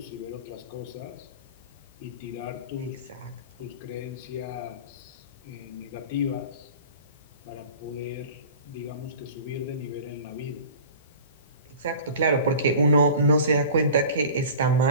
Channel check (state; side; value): inverted; both; correlation -0.39